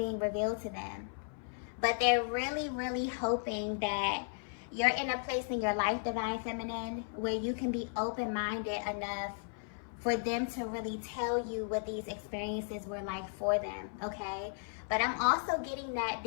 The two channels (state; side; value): silent; right; 54 dB below the other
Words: revealed to them. But they're really, really hoping that you're in a place in your life, Divine Feminine, where you can be open-minded enough for them to really tell you what these experiences were like for them, okay? But I'm also getting that